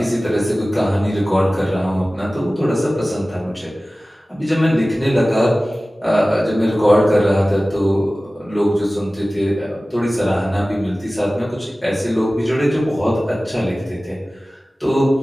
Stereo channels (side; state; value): both; normal; correlation 0.97